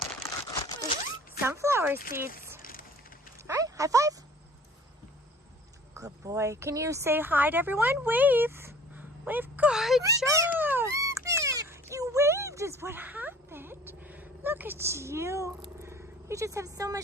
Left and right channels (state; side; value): normal; both; correlation 0.49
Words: Sunflower seeds. All right, high five. Good boy. Can you say hi to everyone? Wave. Wave. Good job. You waved is what happened. Look at you. You just have so